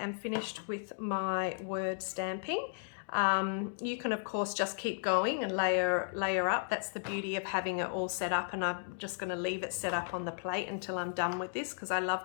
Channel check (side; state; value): right; silent; digital silence